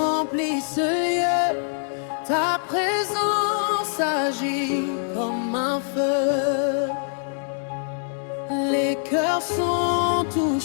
ce lieu. Ta présence agit comme un feu. Les cœurs sont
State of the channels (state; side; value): silent; right; digital silence